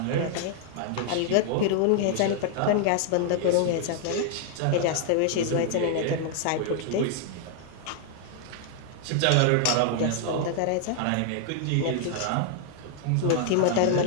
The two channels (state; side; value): different; both; correlation 0.00